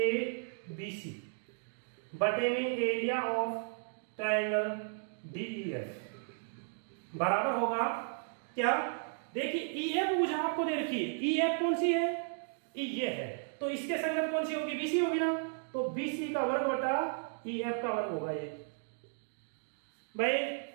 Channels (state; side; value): silent; left; digital silence